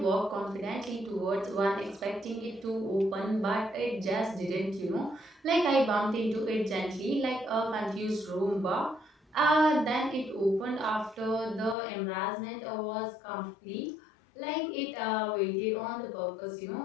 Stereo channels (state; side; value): drops out; right; at 11.8 s